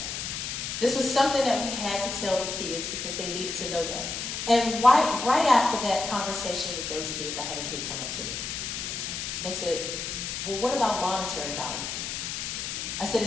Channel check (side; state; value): left; noise; hiss, 4 dB below the sound